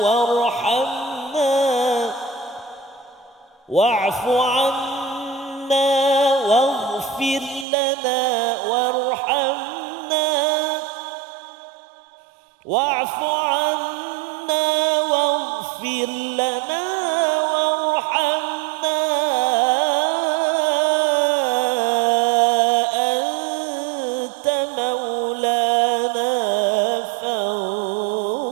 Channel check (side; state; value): left; drops out; at 7.7 s